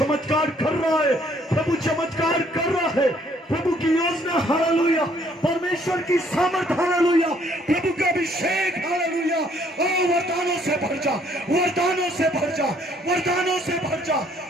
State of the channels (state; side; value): normal; both; correlation 0.64